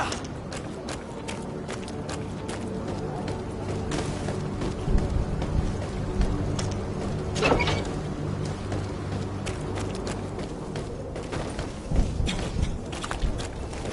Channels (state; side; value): identical; both; correlation 1.00